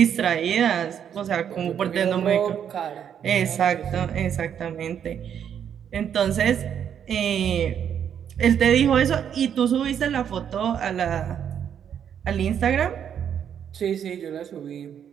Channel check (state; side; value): quieter; left; 8.7 dB